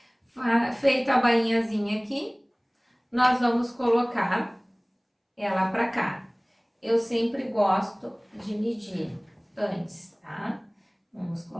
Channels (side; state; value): both; identical; correlation 1.00